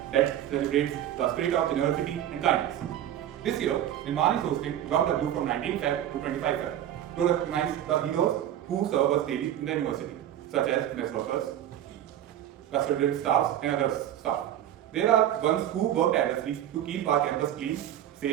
that celebrates the spirit of generosity and kindness. This year, Nirmaan is hosting JOGW from 19 Feb to 25 Feb to recognize the heroes who serve us daily in the university, such as mess workers, custodial staffs, and other staff. There are ones who work tirelessly to keep our campus clean,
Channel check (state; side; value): quieter; left; 11.4 dB